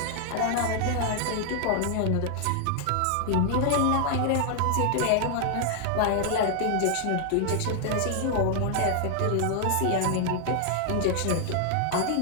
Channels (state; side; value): different; both; correlation 0.00